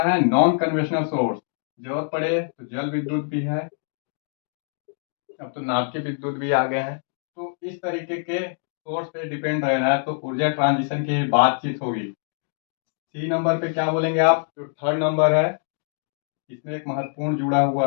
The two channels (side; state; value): right; silent; 61 dB below the other